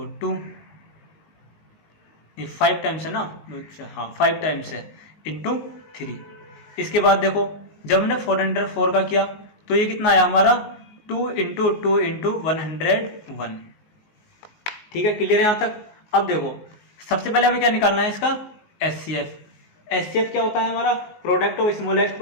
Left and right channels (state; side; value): late; right; 19 ms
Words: 2, ये 5 टाइम्स है ना, हाँ 5 टाइम्स है इंटू 3। इसके बाद देखो जब हमने 404 का किया तो ये कितना आया हमारा, 2 इंटू 2 इंटू 101। ठीक है, क्लियर है यहाँ तक। अब देखो सबसे पहले हमें क्या निकालना है, इसका एचसीएफ। एचसीएफ क्या होता है हमारा, product of smallest